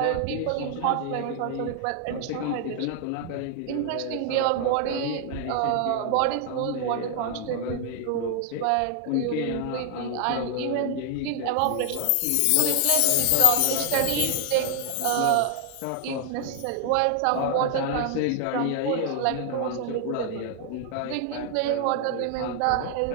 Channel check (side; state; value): both; different; correlation 0.00